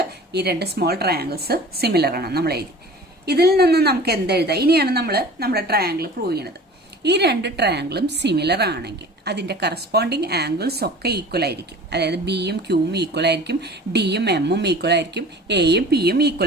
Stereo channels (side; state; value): both; normal; correlation 0.42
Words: ഈ രണ്ട് സ്മോൾ ട്രയാങ്കിൾസ് സിമിലർ ആണ് നമ്മൾ എഴുതി. ഇതിൽ നിന്ന് നമുക്ക് എന്തെഴുതാം? ഇനിയാണ് നമ്മൾ നമ്മുടെ ട്രയാങ്കിൾ പ്രൂവ് ചെയ്യുന്നത്. ഈ രണ്ട് ട്രയാങ്കിളും സിമിലർ ആണെങ്കിൽ അതിന്റെ കറസ്പോണ്ടിങ് ആംഗിൾസ് ഒക്കെ ഈക്വൽ ആയിരിക്കും. അതായത് ബിയും ക്യൂവും ഈക്വൽ ആയിരിക്കും, ഡിയും എമ്മും ഈക്വൽ ആയിരിക്കും, എയും പിയും